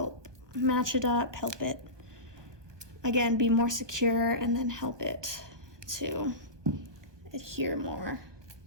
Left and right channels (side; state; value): left; late; 1.2 ms